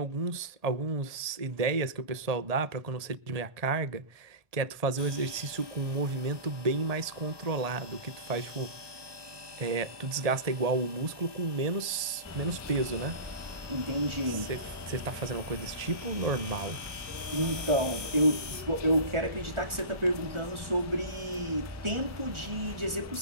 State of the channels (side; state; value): left; late; 1.7 ms